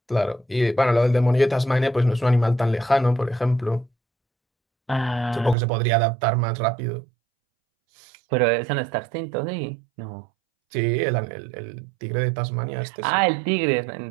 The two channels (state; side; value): drops out; left; at 5.6 s